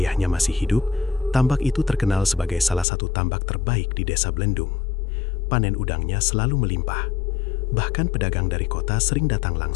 masih hidup, tambak itu terkenal sebagai salah satu tambak terbaik di desa Blendung. Panen udangnya selalu melimpah. Bahkan pedagang dari kota sering datang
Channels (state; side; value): drops out; right; at 2.9 s